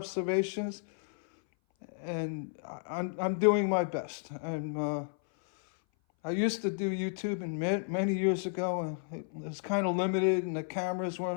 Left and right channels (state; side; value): silent; right; 56 dB below the other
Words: and I'm doing my best. I used to do YouTube many years ago, and it was kind of limited, and the cameras